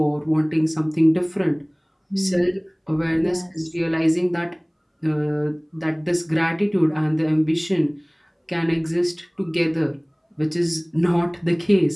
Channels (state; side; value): identical; both; correlation 1.00